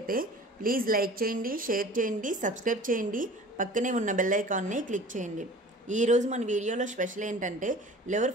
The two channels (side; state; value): both; normal; correlation 0.43